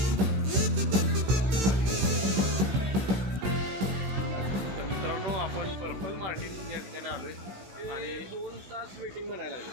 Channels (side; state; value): left; late; 16 ms